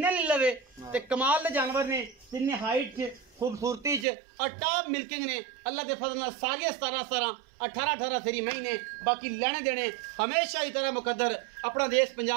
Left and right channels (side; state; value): left; drops out; at 4.0 s